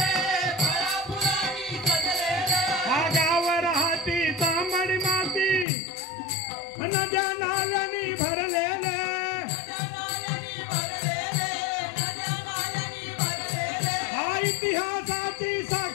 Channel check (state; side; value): drops out; right; at 5.7 s